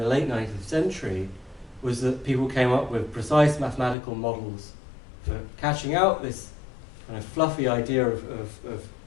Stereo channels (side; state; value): right; drops out; at 4.0 s